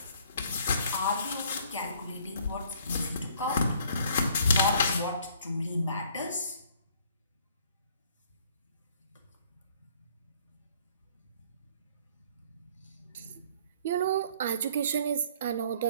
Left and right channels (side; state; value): both; inverted; correlation -0.59